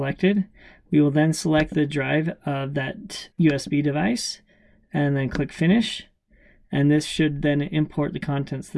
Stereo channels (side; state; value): both; identical; correlation 1.00